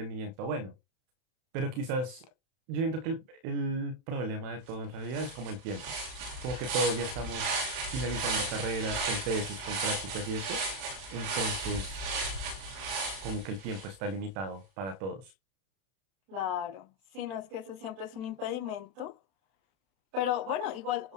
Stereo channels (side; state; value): left; late; 31 ms